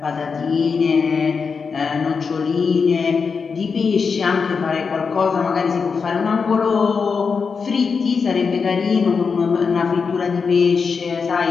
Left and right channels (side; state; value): right; quieter; 5.4 dB